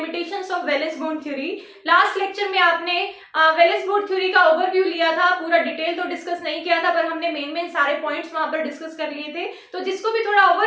of valence bond theory. Last lecture में आपने वैलेंस बॉन्ड थ्योरी का ओवरव्यू लिया था, पूरा डिटेल तो डिस्कस नहीं किया था, पर हमने मेन सारे पॉइंट्स वहां पर डिस्कस कर लिए थे। तो जिसको भी थोड़ा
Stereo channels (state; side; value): identical; both; correlation 1.00